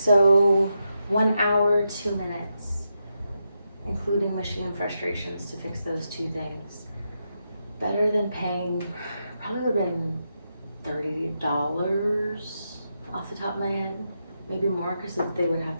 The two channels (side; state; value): both; inverted; correlation -0.85